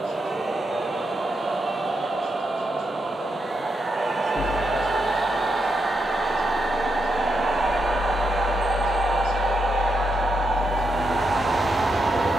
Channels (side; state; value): both; normal; correlation 0.83